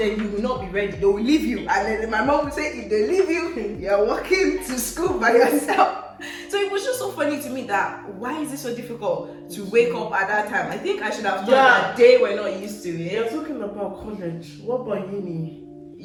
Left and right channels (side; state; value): both; identical; correlation 1.00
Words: you will not be ready. They will leave you. And then my mom will say, if they leave you, you're walking to school by yourself. So it was just so funny to me that why is it so difficult to wake up at that time? I think I should have thought that they were not used to it. You're talking about college. What about uni?